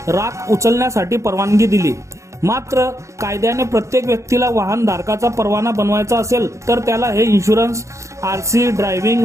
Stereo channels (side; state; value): left; late; 0.15 ms